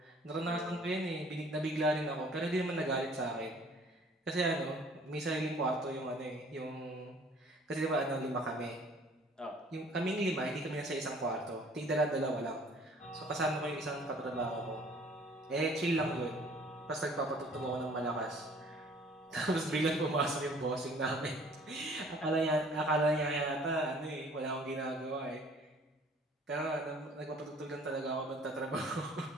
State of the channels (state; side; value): normal; both; correlation 0.54